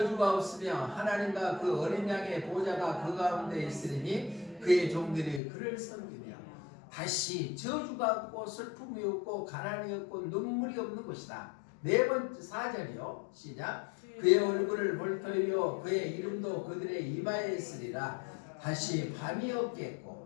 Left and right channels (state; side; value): drops out; right; at 5.4 s